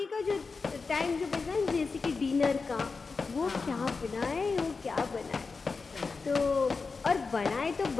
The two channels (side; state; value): right; quieter; 4.5 dB